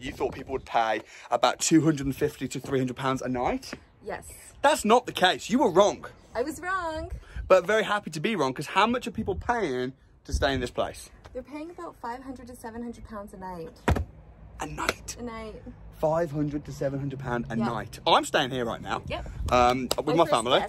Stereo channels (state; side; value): identical; both; correlation 1.00